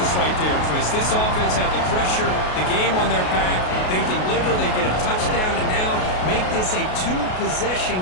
right there, Chris. This offense had the pressure, the game on their back. They deliver, they get a touchdown, and now make this a 2-possession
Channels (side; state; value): right; late; 33 ms